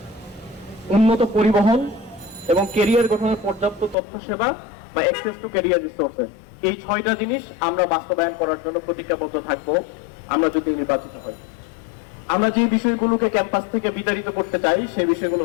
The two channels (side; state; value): right; drops out; at 4.0 s